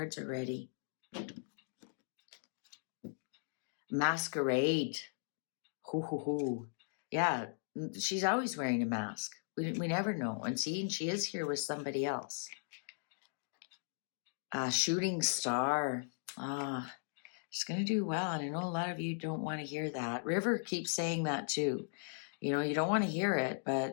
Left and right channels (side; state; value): right; silent; digital silence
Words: are ready. Masquerade. Hoo hoo hoo. Yeah, she's always wearing a mask. We never know. And she is here with somebody else. Shooting star. She's going to do well. And I know a lot of you don't want to hear that. River keeps saying that too. You know, you don't want to hear it,